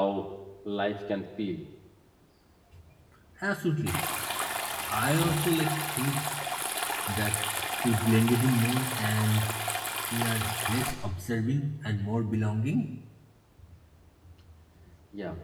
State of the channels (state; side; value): identical; both; correlation 1.00